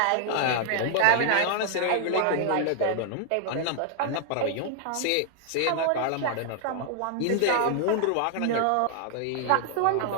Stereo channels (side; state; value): both; different; correlation 0.00